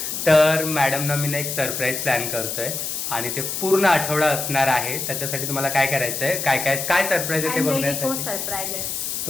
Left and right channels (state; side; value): noise; left; hiss, 4 dB below the sound